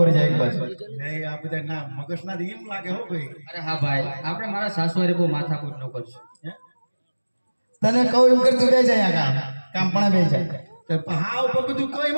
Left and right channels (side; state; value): both; inverted; correlation -1.00